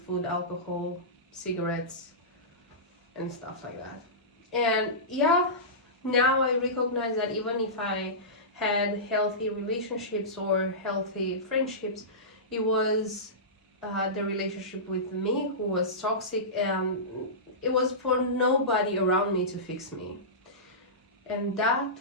alcohol, cigarettes and stuff like that. And yeah, now I recognize that even if I had healthy relationships or healthy friendships, it was the relationship with me who was toxic, and it was for nobody around me to fix me. And that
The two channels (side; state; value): both; normal; correlation -0.19